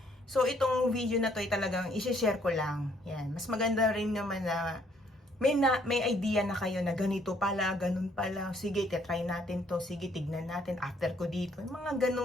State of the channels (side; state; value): both; normal; correlation 0.66